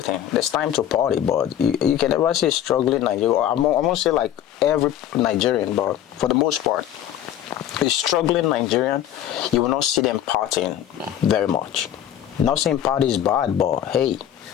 There's time to party, but you can never say struggling Nigerian. I won't say like every Nigerian, but for the most part, a struggling Nigerian, you will not see them partying very much. Not saying party is bad, but hey,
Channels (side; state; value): right; quieter; 11.0 dB